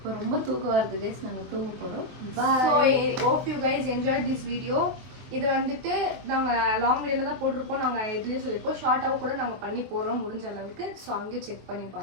ரொம்ப தூக்கம் வருது கைஸ். நாங்க தூங்க போறோம். So hope you guys enjoyed this video. இது வந்துட்டு நாங்க லாங் வீடியோல தான் போட்டிருப்போம். நாங்க இதுலயே சொல்லிருப்போம் ஷார்ட்டாவும் கூட நாங்க பண்ணி போடுறோம் முடிஞ்ச அளவுக்கு. ஸோ அங்கேயும் செக் பண்ணி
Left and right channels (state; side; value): late; left; 23 ms